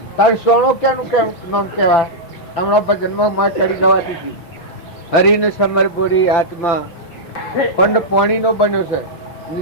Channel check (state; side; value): late; right; 5.9 ms